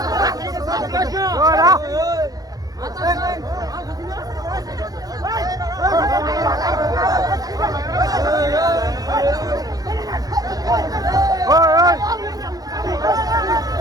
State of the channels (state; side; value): late; left; 0.18 ms